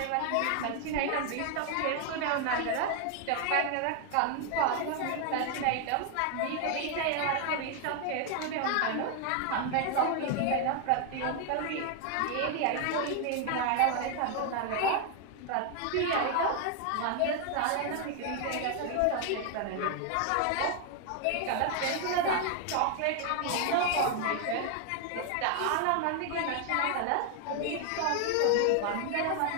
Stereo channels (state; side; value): different; both; correlation 0.00